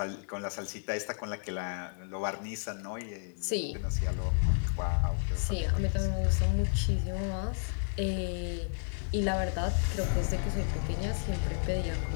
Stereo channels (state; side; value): silent; right; 57 dB below the other